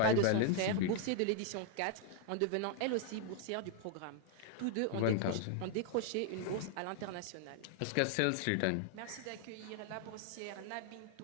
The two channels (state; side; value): different; both; correlation 0.00